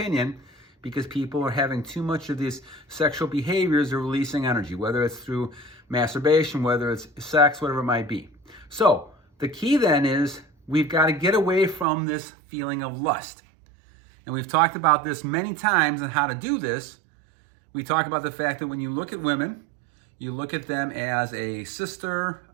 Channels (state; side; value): drops out; left; at 11.9 s